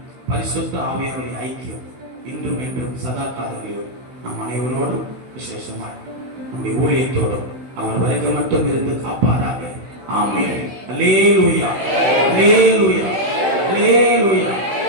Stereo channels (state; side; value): late; left; 16 ms